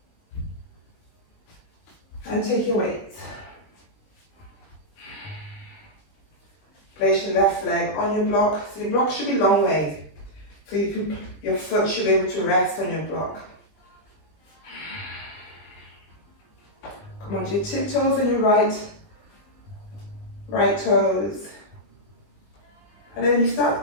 And take your weights. Place your left leg on your block. So your block should be long way. So your foot should be able to rest on your block. Come onto your tiptoes and your right toes. And then you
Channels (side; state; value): right; late; 20 ms